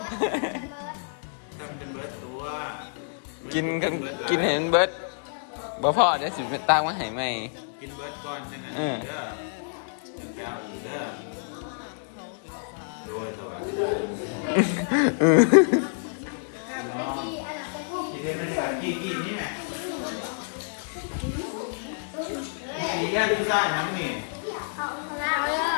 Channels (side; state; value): right; silent; digital silence